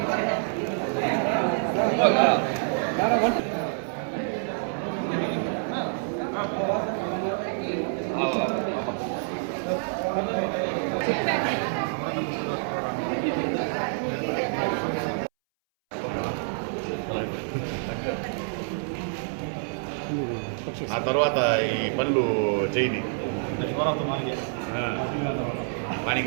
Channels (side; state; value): left; silent; 60 dB below the other